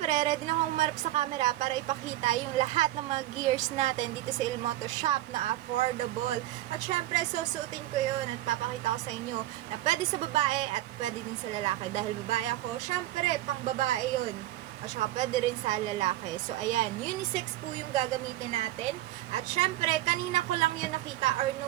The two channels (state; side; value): quieter; left; 15.2 dB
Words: ready na akong umarap sa camera para ipakita yung lahat ng mga gears natin dito sa Ilmoto Shop na affordable. At syempre, susuotin ko yun at papakita ko sa inyo na pwede sa babae at pwede din sa lalaki. Dahil babae ako, syempre, pang babae yun. At saka pwede rin sa lalaki. So, ayan, unisex po yung gagamitin natin. At syempre, kanina ko lang yun nakita or